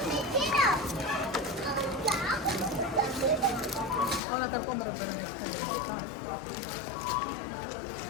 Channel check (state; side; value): drops out; right; at 4.2 s